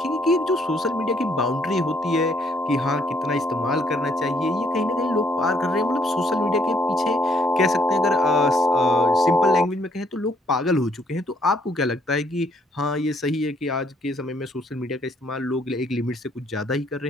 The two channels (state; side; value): normal; both; correlation 0.68